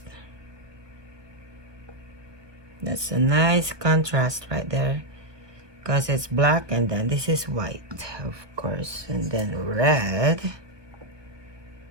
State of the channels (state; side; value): late; left; 1.2 ms